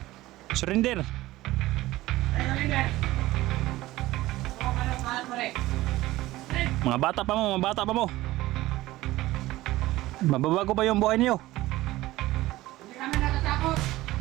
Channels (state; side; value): quieter; left; 17.4 dB